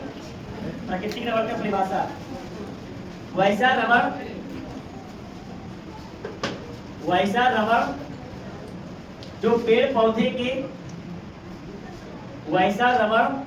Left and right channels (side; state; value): both; identical; correlation 1.00